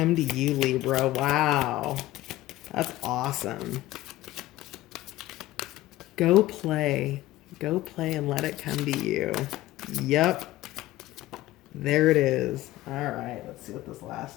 to you, Libra. Wow. That's awesome. Go play. Go play and let it come to you. Yep. There it is. All right. Let's see what this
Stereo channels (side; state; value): right; quieter; 16.2 dB